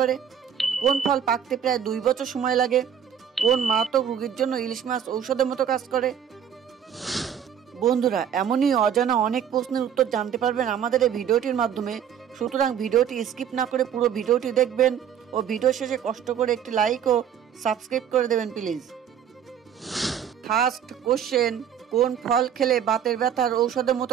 কোন ফল পাকতে প্রায় 2 বছর সময় লাগে? কোন মারাত্মক রোগের জন্য ইলিশ মাছ ঔষধের মতো কাজ করে? বন্ধুরা, এমনই অজানা অনেক প্রশ্নের উত্তর জানতে পারবেন আমাদের এই ভিডিওটির মাধ্যমে। সুতরাং ভিডিওটি স্কিপ না করে পুরো ভিডিওটি দেখবেন ও ভিডিও শেষে কষ্ট করে একটি লাইক ও সাবস্ক্রাইব করে দেবেন প্লিজ। ফার্স্ট কোশ্চেন, কোন ফল খেলে বাতের ব্যথার ঔষধের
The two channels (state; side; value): quieter; left; 8.7 dB